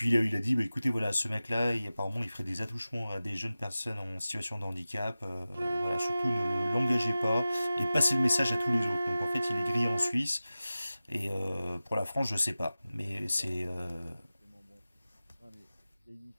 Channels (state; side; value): inverted; both; correlation -0.96